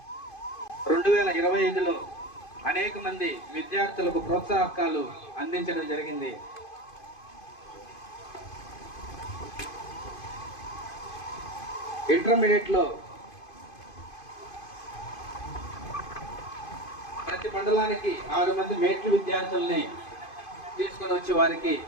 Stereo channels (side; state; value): right; late; 2.5 ms